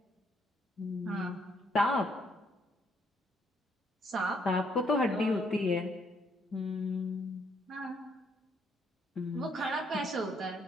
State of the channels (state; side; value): normal; both; correlation 0.70